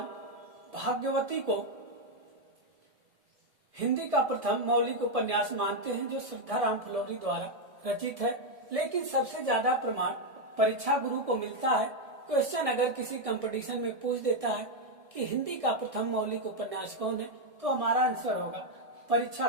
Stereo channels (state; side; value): late; left; 1.7 ms